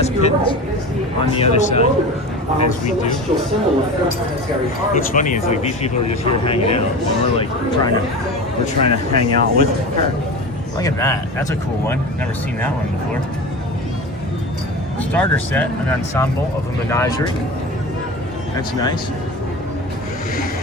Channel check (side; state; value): both; normal; correlation 0.30